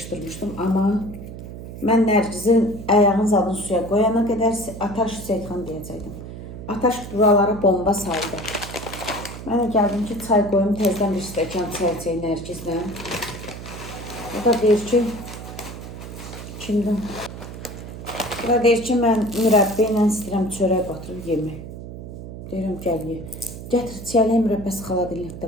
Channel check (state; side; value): noise; right; hum, 11 dB below the sound